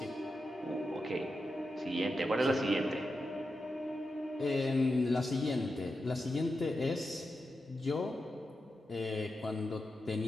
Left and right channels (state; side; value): normal; both; correlation 0.89